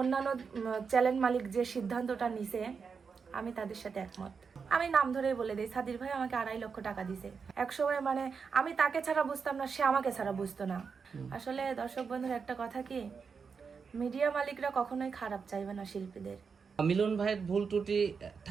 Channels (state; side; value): quieter; left; 5.6 dB